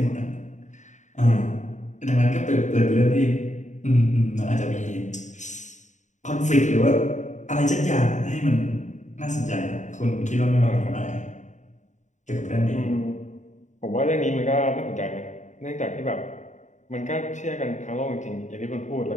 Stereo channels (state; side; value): late; right; 0.35 ms